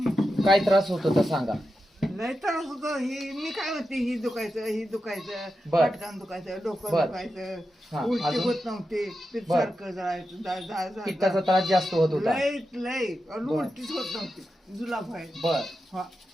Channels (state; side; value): normal; both; correlation 0.89